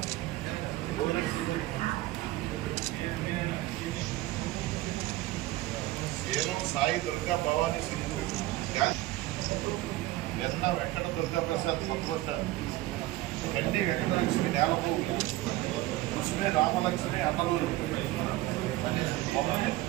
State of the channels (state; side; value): quieter; left; 17.2 dB